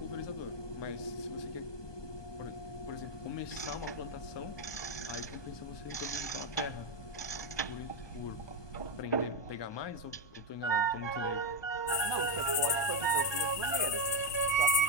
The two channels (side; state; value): right; late; 1.2 ms